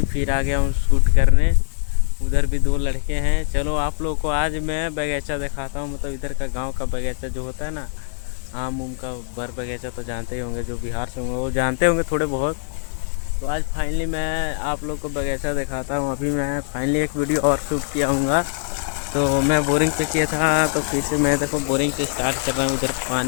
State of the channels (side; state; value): right; silent; digital silence